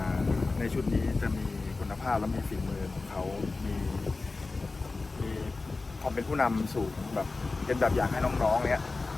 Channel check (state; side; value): quieter; right; 3.7 dB